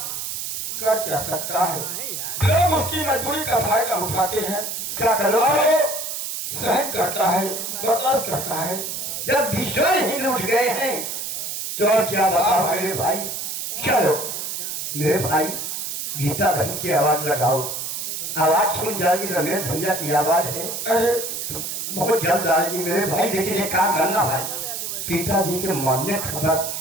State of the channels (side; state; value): right; noise; hiss, 4 dB below the sound